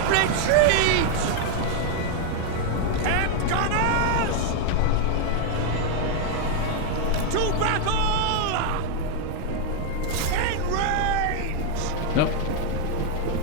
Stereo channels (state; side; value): different; both; correlation 0.00